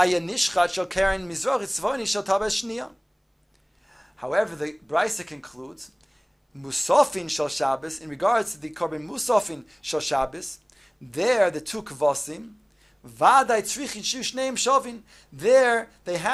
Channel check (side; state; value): both; identical; correlation 1.00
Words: nishchat shel keren mizrach tzvoni shel tabas shniya. However, the Brisa concludes, Musafin shel Shabbos, in regards to the korban Musafin shel Shabbos, there the two kvasim, Vaday tzrichin shu shneim shavin, there they